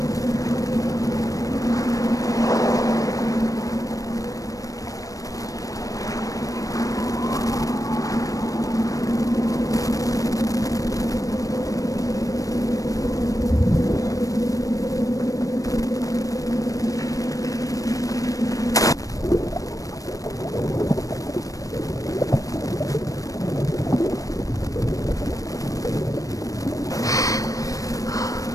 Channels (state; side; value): late; right; 0.16 ms